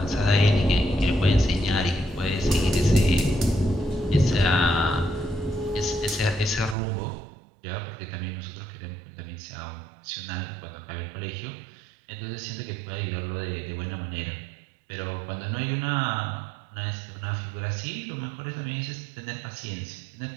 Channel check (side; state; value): left; drops out; at 6.8 s